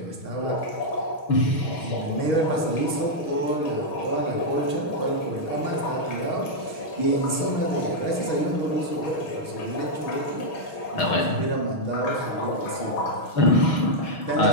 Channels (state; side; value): late; right; 6.3 ms